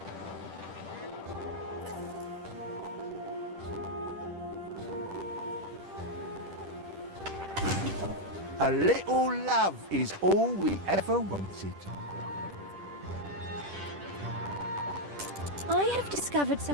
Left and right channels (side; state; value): left; late; 10 ms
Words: A little love is all we ever wanted. I have discovered